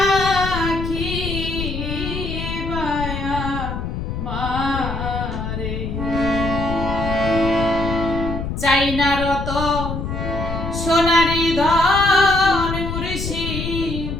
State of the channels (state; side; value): noise; left; rumble, 5 dB below the sound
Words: বায়া মারে চাই না রত সোনারি ধন মুর্শি